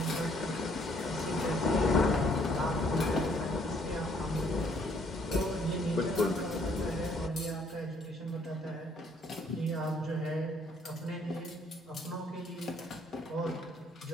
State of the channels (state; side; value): normal; both; correlation 0.65